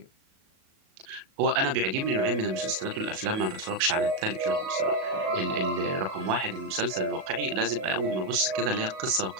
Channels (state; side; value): late; left; 37 ms